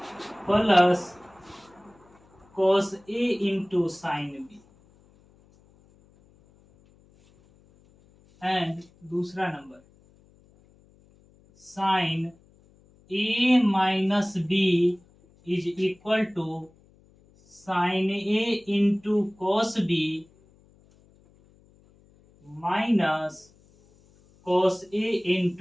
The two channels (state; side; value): noise; left; hum, 30 dB below the sound